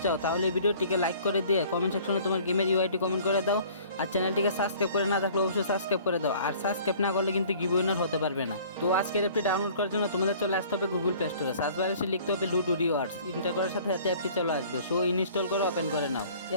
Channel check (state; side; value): inverted; both; correlation -0.51